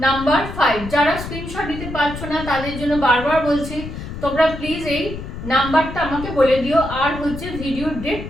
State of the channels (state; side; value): noise; left; rumble, 9 dB below the sound